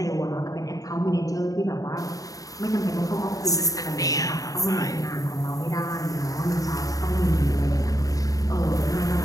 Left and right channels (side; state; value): right; late; 0.17 ms